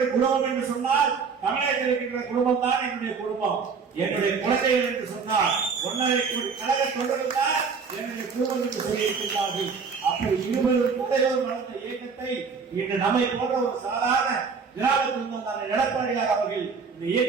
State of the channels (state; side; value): quieter; left; 5.4 dB